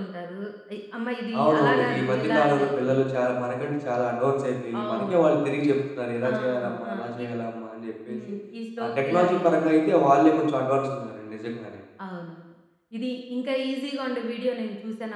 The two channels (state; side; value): identical; both; correlation 1.00